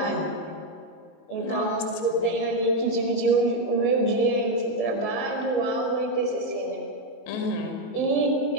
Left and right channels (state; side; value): late; right; 19 ms